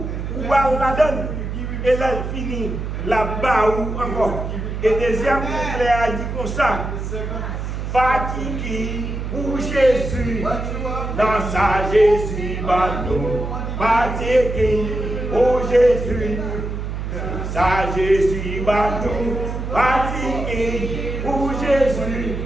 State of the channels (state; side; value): noise; right; hum, 5 dB below the sound